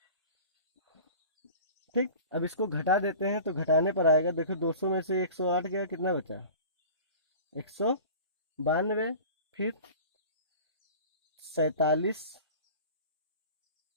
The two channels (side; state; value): both; inverted; correlation -0.40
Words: ठीक, अब इसको घटा देते हैं तो घटाने पर आएगा, देखो 200 में से 108 गया, कितना बचा 192। फिर 47